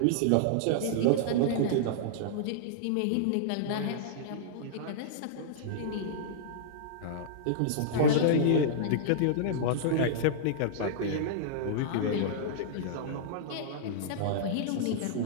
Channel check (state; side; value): different; both; correlation -0.02